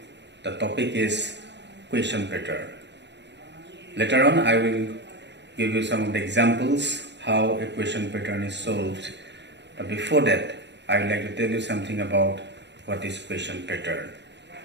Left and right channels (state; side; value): late; left; 0.51 ms